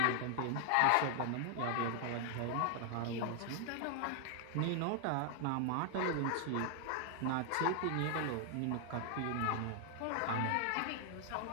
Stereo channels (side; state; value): both; different; correlation 0.00